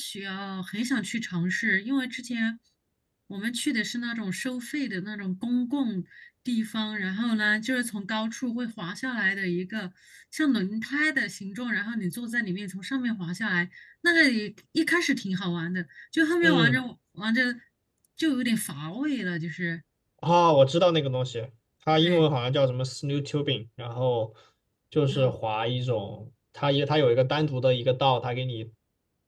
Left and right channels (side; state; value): both; identical; correlation 1.00